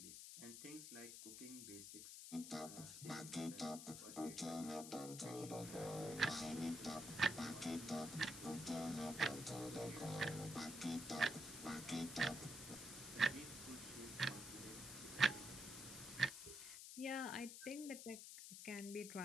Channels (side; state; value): left; noise; hiss, 9 dB below the sound